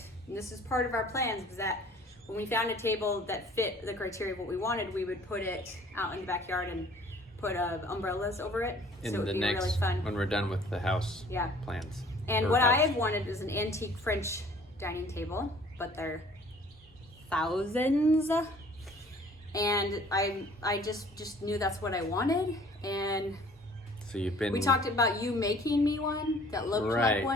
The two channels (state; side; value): normal; both; correlation 0.53